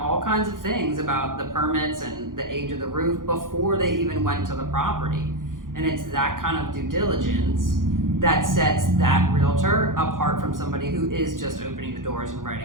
kinds of things about the permits and the age of the roof before they even went to the property. And it's that kind of due diligence that sets that realtor apart from somebody who is just opening the doors and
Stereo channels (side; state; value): left; late; 0.90 ms